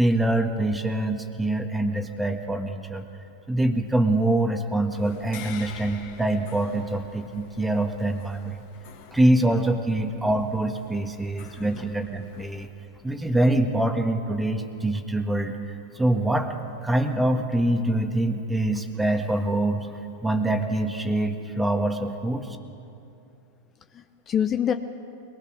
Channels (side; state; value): both; normal; correlation 0.79